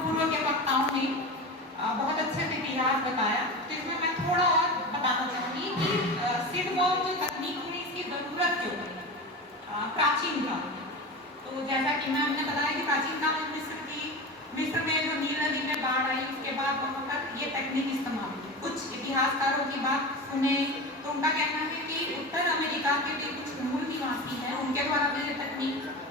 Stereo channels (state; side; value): normal; both; correlation 0.27